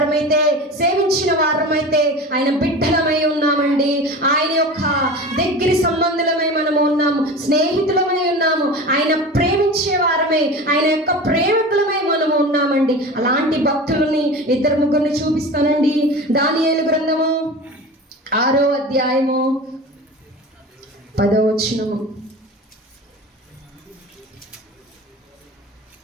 సేవించిన వారమైతే ఆయన బిడ్డలమై ఉన్నామండి. ఆయన యొక్క దగ్గర సంబంధులమై మనము ఉన్నాము, స్నేహితులమై ఉన్నాము, ఆయన ప్రేమించే వారమై, ఆయన యొక్క ప్రేమికులమై మనము ఉన్నామండి. అలాంటి భక్తులని 2-3 చూపిస్తానండి. దానియేలు గ్రంథము 6వ అధ్యాయము 10వ వచనము.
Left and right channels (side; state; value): both; normal; correlation 0.33